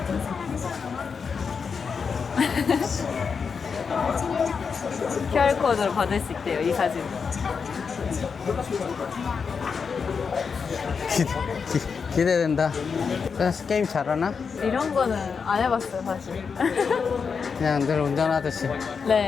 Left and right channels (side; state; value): right; quieter; 5.7 dB